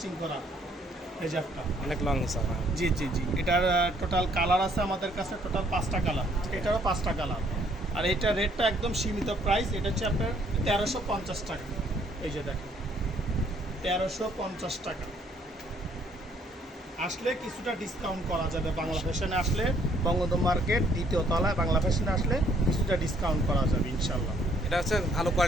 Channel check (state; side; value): normal; both; correlation 0.65